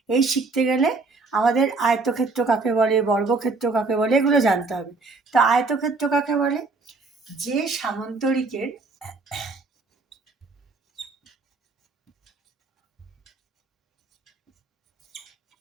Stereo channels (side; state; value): left; quieter; 3.9 dB